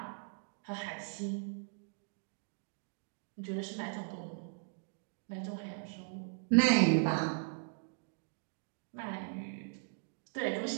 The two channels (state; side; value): silent; left; digital silence